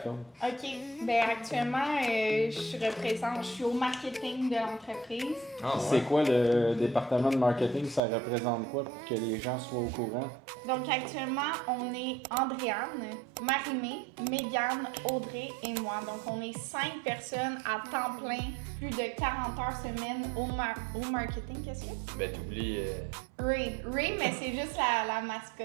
OK. Ben actuellement, je suis au marketing de l'entreprise. Ah, C'est ouais. quoi le département de marketing? Ça représente quoi pour que les gens soient au courant? Donc actuellement, on est Andréane, Marie-Mé, Mégane, Audrey et moi. Donc on est 5 personnes à temps plein, plus de 40 heures semaine au marketing. Qu'est-ce que c'est? Ben, t'oublies. Ray. Ray, mais c'est juste la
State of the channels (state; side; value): drops out; left; at 8.0 s